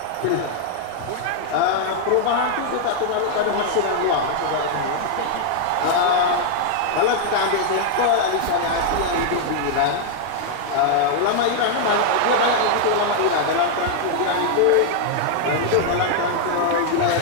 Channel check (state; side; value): different; both; correlation 0.00